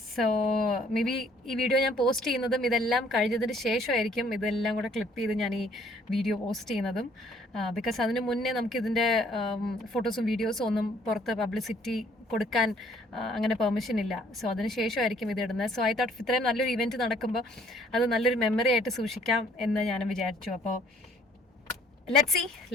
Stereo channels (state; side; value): normal; both; correlation 0.61